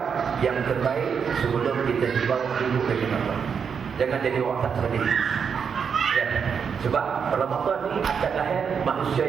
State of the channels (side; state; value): left; quieter; 6.7 dB